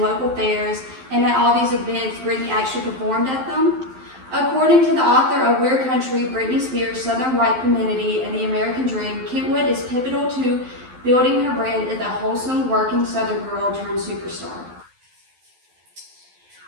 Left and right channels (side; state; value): left; late; 12 ms